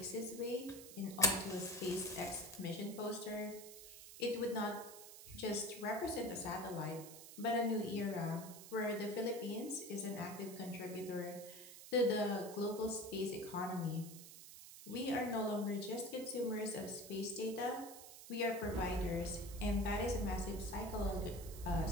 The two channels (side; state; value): right; noise; hiss, 14 dB below the sound